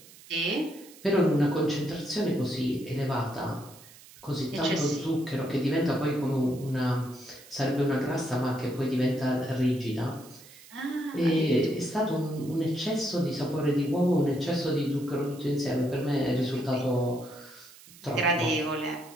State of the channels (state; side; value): noise; right; hiss, 21 dB below the sound